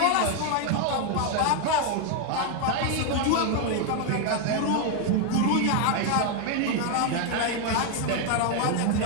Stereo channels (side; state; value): both; different; correlation 0.01